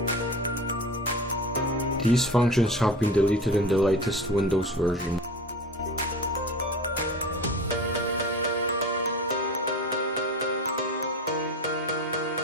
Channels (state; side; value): normal; both; correlation 0.33